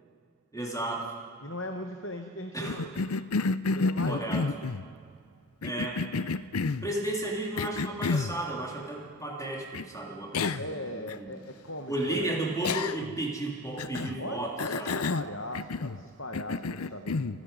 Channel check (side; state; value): both; normal; correlation 0.35